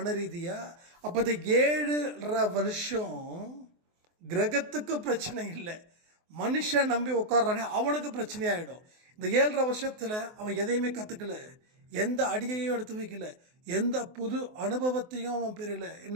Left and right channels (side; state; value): left; late; 24 ms